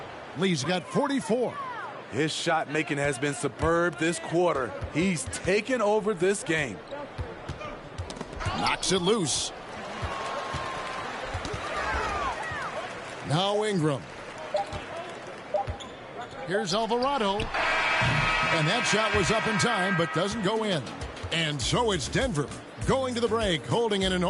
Lee's got 44. His shot making has been superb this quarter. He's taken over this game. Knocks it loose. Now Ingram. Here's Alvarado. And that shot was up in time, but doesn't go in. And so it's Denver going to the break, holding an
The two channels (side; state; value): both; identical; correlation 1.00